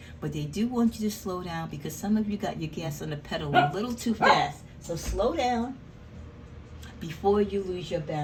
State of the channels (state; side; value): identical; both; correlation 1.00